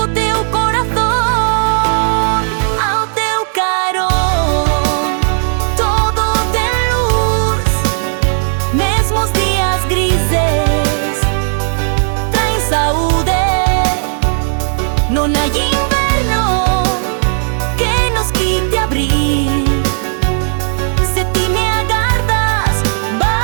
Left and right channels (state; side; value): silent; left; 65 dB below the other